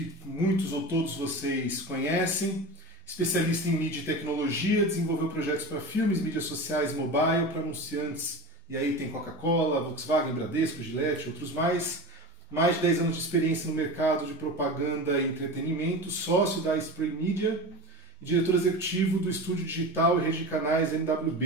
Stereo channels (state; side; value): normal; both; correlation 0.28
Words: muitos ou todos vocês conhecem, especialista em mídia e tecnologia, desenvolveu projetos para filmes, mídias sociais e mobile, para anunciantes, e aí tem Coca-Cola, Volkswagen, Bradesco, Gillette, outros mais. Mais de 10 anos de experiência no mercado de propaganda e entretenimento, sócio da Spray Media e diretor executivo do estúdio digital e rede de canais